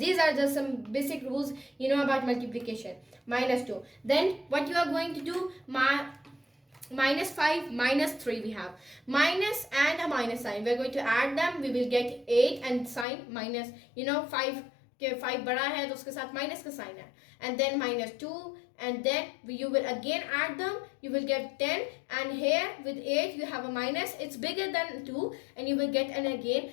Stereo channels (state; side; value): drops out; right; at 13.1 s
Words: are just some basic rules you know about multiplication. Minus 2. Then what you are going to do, minus 5 minus 3 we have. Minus and a minus sign. We are going to add them. We will get 8 and sign minus, 5 के 5 बड़ा है तो उसके साथ minus का sign है and then minus 2 and then you will again add them, you will get 10 and here with 8 you have a minus, it's bigger than 2 and you will get and